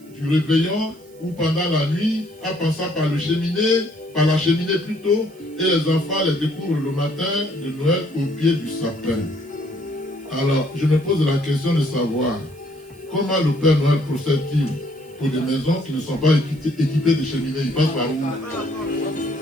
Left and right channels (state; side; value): noise; right; hiss, 28 dB below the sound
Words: du réveillon ou pendant la nuit, en passant par la cheminée plutôt, et les enfants les découvrent le matin de Noël au pied du sapin. Alors, je me pose la question de savoir comment le Père Noël procède-t-il pour des maisons qui ne sont pas équipées de cheminées? Il passe par où?